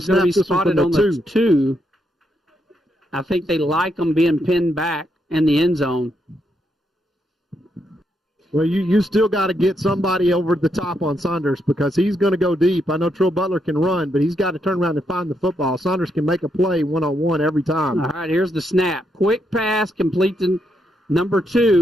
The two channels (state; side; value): normal; both; correlation 0.79